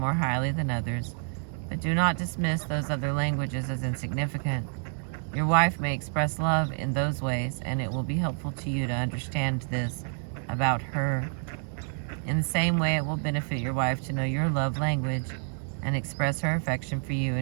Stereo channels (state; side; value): silent; left; 59 dB below the other